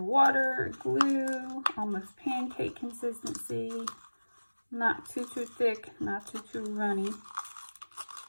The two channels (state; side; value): inverted; both; correlation -1.00